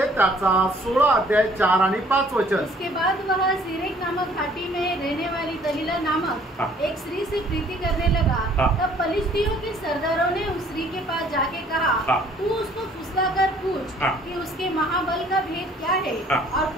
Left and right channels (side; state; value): both; normal; correlation 0.58